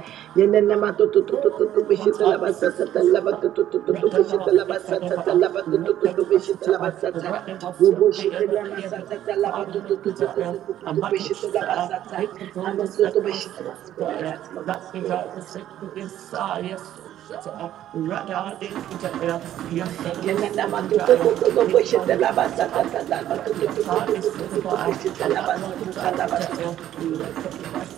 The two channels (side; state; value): left; quieter; 12.0 dB